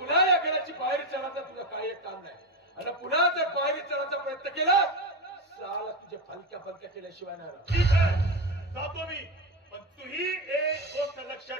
या घराची पायरी चढायचा तुझा काही एक काम नाही. आणि पुन्हा जर पायरी चढायचा प्रयत्न केला, साला तुझे फलक्या फलक्या केल्याशिवाय नाही राहत. ठीक आहे, जातो मी. पण तूही एक गोष्ट लक्षात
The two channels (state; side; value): normal; both; correlation 0.17